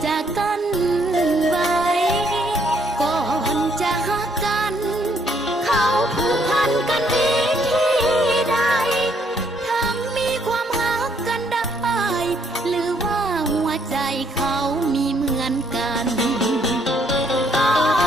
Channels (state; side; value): normal; both; correlation 0.69